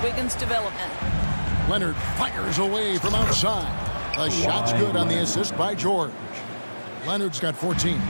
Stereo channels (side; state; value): both; inverted; correlation -1.00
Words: Wiggins' development. Leonard fires away from outside. The shot's good on the assist by George. Leonard's got 14.